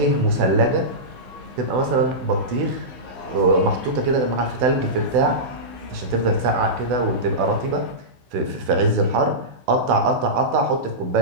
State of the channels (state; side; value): late; left; 16 ms